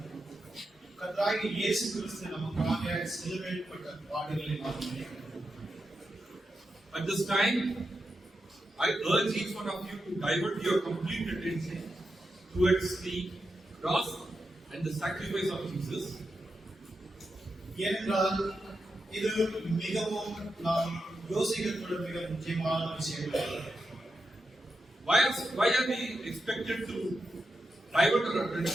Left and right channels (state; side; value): normal; both; correlation 0.87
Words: கர்த்தராகிய இயேசு கிறிஸ்து நமக்காக சிலுவையிடப்பட்ட பாடுகளை நாம் நினைக்கிறோம். At this time, I urge each one of you to divert your complete attention towards the cross and the sacrifice of Jesus. ஏனென்றால் இது மிகவும் நாம் யோசிக்கக்கூடிய மிக முக்கியமான விஷயம். Why are we expected to divert our